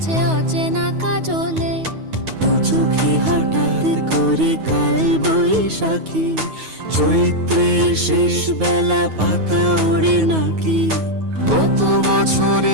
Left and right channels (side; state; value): left; late; 9.4 ms